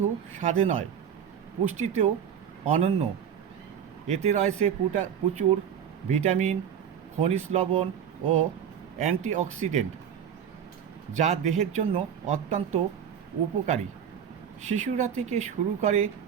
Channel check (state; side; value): quieter; left; 8.4 dB